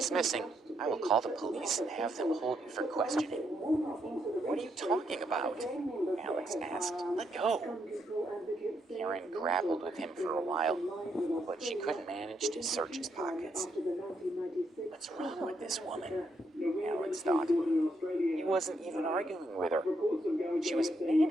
missing, I will call the police and have them hold you for questioning. What are you talking about? Alex asked. Let go. Karen grappled with him for a while, but she couldn't manage to search his pockets. What's wrong with this woman? Alex thought. He wasn't even arguing with her. She was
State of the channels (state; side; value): normal; both; correlation 0.77